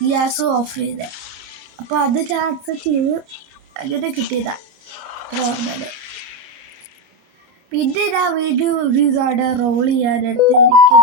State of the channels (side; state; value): left; late; 30 ms